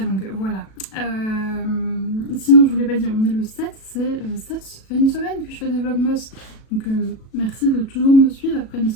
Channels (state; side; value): late; right; 37 ms